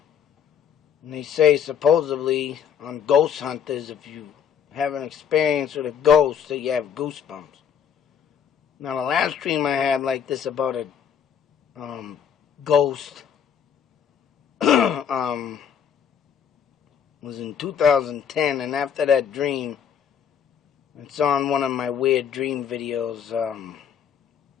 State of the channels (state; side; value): quieter; right; 8.1 dB